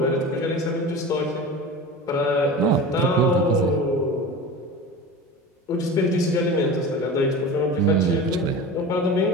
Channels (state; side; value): normal; both; correlation 0.33